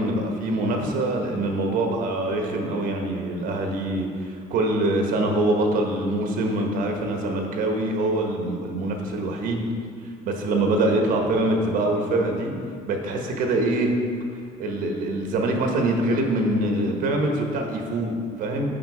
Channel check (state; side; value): normal; both; correlation 0.45